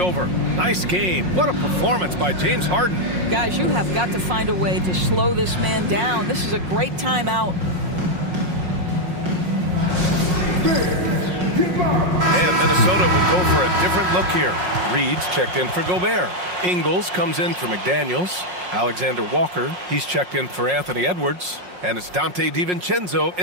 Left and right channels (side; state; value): left; late; 5.5 ms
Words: Nice game. What a performance by James Harden. Guys, you have got to find a way to slow this man down. This is a great timeout. And Minnesota will go for a different look here. Reed's checked in for Gobert. Ingles comes in for McDaniels. Alexander Walker, he's checked in for Anthony Edwards. And it's Dante DiVincenzo